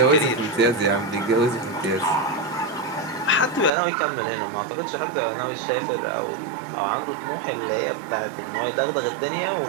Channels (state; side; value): drops out; left; at 3.7 s